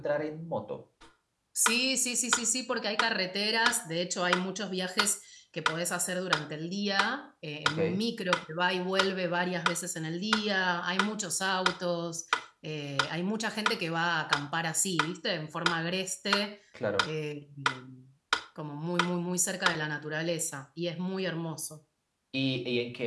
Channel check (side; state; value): both; identical; correlation 1.00